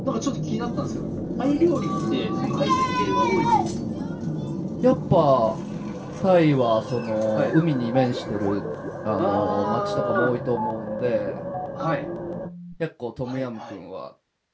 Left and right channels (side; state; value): both; identical; correlation 1.00